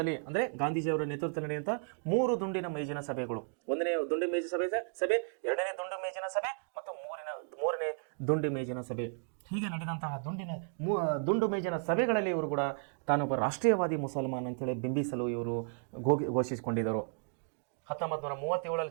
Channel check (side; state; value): left; silent; 55 dB below the other